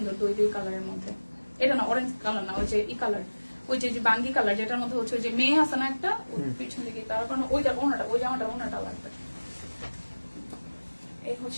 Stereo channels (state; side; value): inverted; both; correlation -1.00